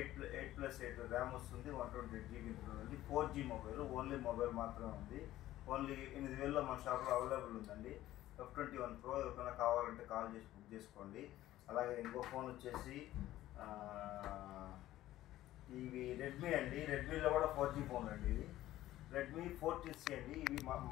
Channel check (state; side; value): quieter; right; 14.6 dB